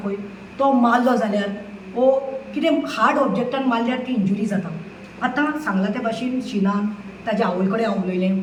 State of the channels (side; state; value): both; identical; correlation 1.00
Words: पळय तो मारलो जाल्यार ओ कितें हार्ड ऑब्जेक्टान मारल्यार ती इंजुरी जाता. आतां सांगला त्या भाशेन शिनान ताज्या आवय कडेन हांव उलयलें,